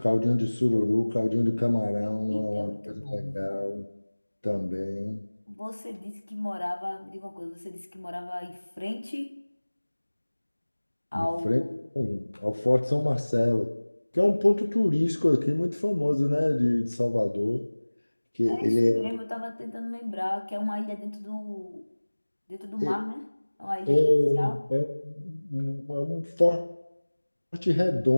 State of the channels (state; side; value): inverted; both; correlation -1.00